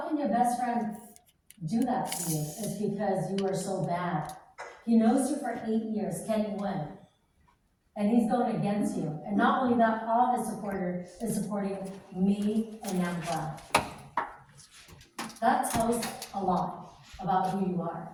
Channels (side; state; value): both; identical; correlation 1.00